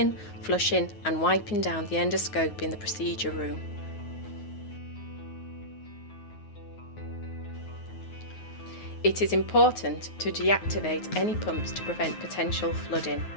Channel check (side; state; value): right; late; 9.4 ms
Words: flushing and wiping down the endoscope in the procedure room. It is important to deactivate any pumps to prevent potential flooding.